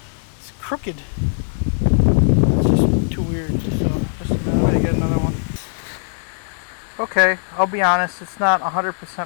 It's crooked. It's just too weird. So just a minute, I'm gonna get another one. Okay, I'll be honest, it's not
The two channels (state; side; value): silent; right; digital silence